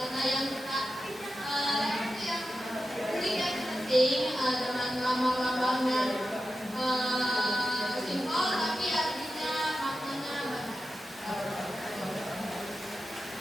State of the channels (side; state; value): both; normal; correlation 0.91